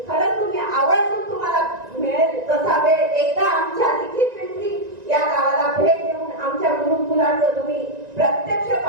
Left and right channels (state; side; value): late; left; 1.9 ms